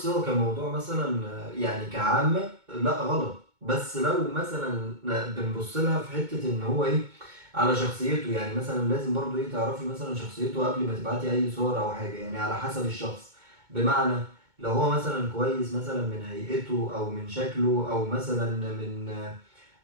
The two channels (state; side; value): late; left; 2.2 ms